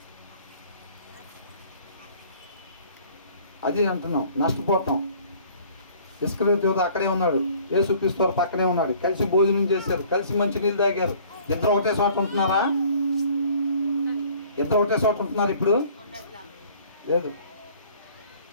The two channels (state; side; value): inverted; both; correlation -0.54